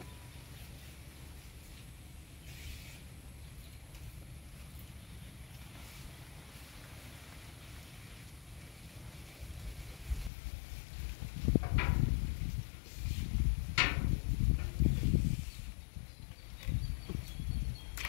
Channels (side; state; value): right; drops out; at 10.3 s